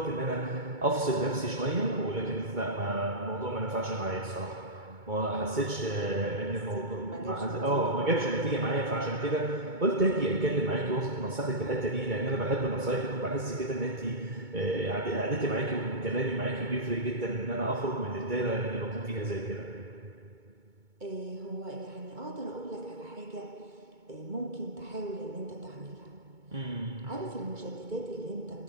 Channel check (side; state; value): left; late; 2.2 ms